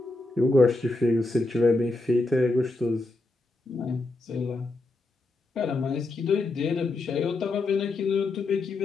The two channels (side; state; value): right; quieter; 3.1 dB